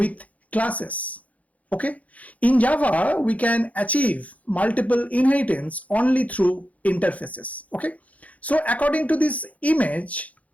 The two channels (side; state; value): right; late; 0.069 ms